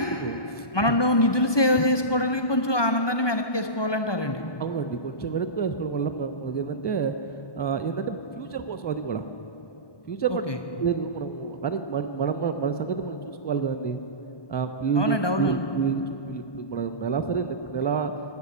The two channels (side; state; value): right; late; 1.2 ms